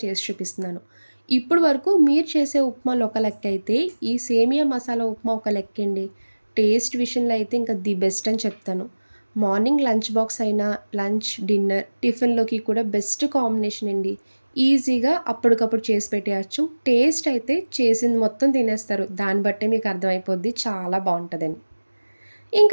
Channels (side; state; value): both; inverted; correlation -1.00